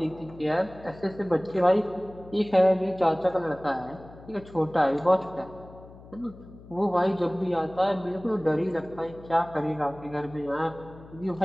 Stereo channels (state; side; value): noise; left; hum, 20 dB below the sound